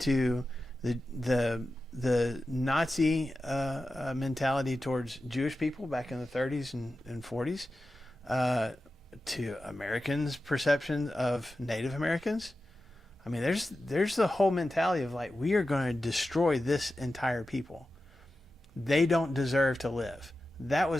the Nazi mentality towards Jewish people back in the 30s and 40s, to Americans' perception of Native Americans. I mean, there's the whole mentality of like, we are going to destroy this entire people. They don't deserve to live. That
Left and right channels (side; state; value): both; normal; correlation 0.93